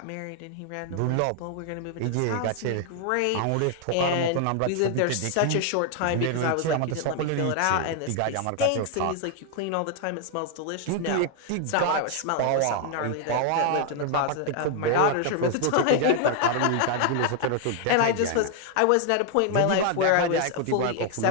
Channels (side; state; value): both; different; correlation 0.00